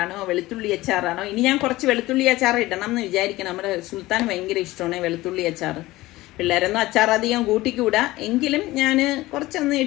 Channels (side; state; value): right; quieter; 18.4 dB